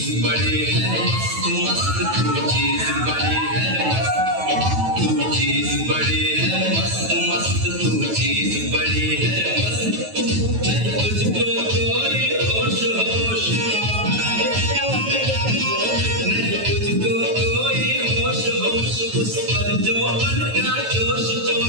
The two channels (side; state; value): left; late; 9.2 ms